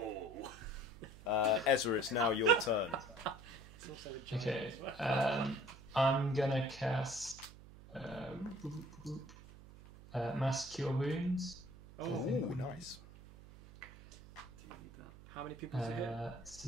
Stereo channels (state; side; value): noise; right; hum, 18 dB below the sound